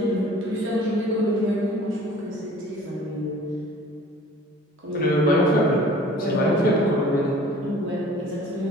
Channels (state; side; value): normal; both; correlation 0.48